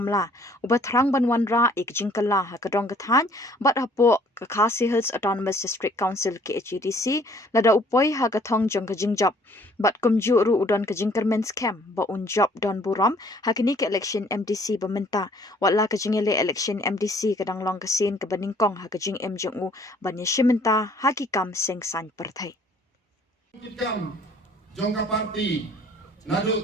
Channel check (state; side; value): normal; both; correlation 0.58